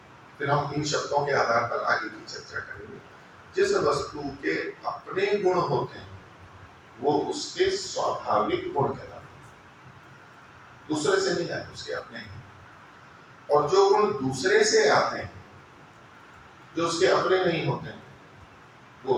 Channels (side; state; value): both; identical; correlation 1.00